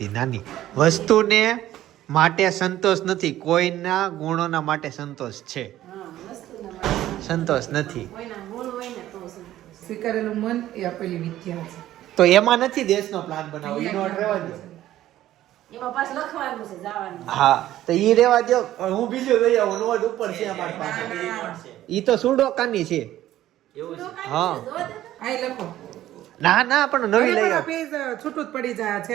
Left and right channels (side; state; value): left; quieter; 13.6 dB